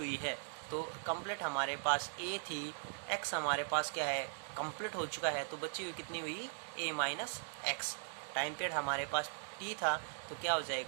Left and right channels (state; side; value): silent; left; digital silence